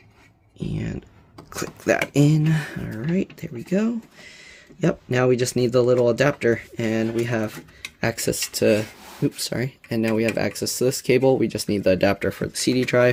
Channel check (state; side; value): identical; both; correlation 1.00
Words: And click that in. All right, there we go. Yep, now we just need the little adapter, and we have access to, and now we have access to this cable. We just need the adapter for the CD